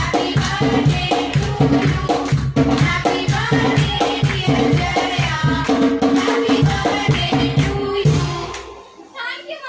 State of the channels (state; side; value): identical; both; correlation 1.00